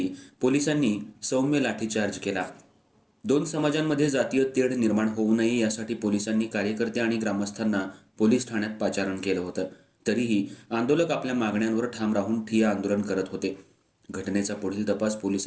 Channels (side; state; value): both; identical; correlation 1.00